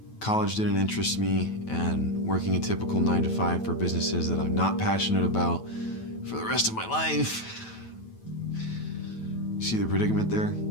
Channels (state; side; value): late; right; 9.2 ms